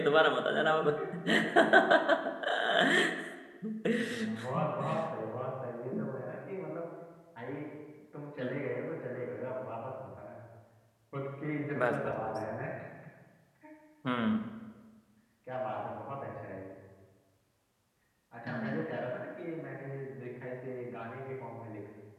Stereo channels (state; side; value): identical; both; correlation 1.00